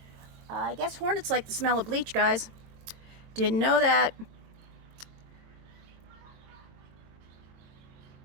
I guess hornets like the smell of bleach, guys. Didn't know that.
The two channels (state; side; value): late; left; 22 ms